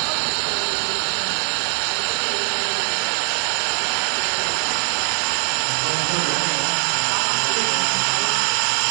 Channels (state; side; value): silent; left; digital silence